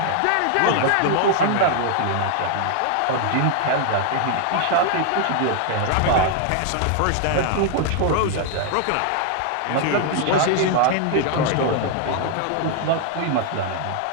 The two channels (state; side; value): different; both; correlation 0.00